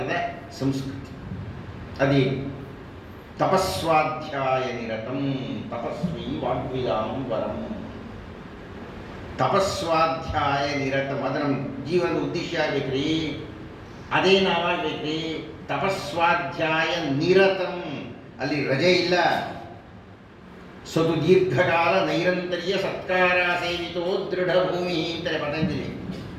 ಸಂಸ್ಕೃತಿ. ಅದೇ ತಪಸ್ವಾಧ್ಯಾಯ ನಿರತಂ ತಪಸ್ವಿ ವಾಗ್ವಿದಾಂ ವರಂ. ತಪಸ್ವಾಧ್ಯಾಯ ನಿರತಂ ಅದು ನಮ್ಮ ಜೀವನದ ಉದ್ದೇಶ ಆಗಬೇಕ್ರಿ, ಅದೇ ನಾವಾಗಬೇಕ್ರಿ. ತಪಸ್ವಾಧ್ಯಾಯ ನಿರತಂ, ಅಲ್ಲಿ ರಜೆ ಇಲ್ಲ. ಸದು ದೀರ್ಘಕಾಲ ನೈರಂತರ್ಯ ಸತ್ಕಾರ ಸೇವಿತೋ ದೃಢ ಭೂಮಿ ಅಂತಾರೆ ಪತಂಜಲಿ.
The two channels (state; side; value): identical; both; correlation 1.00